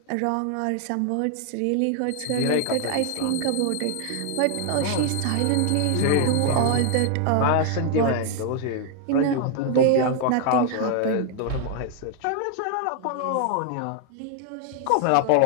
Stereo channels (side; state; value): both; different; correlation 0.00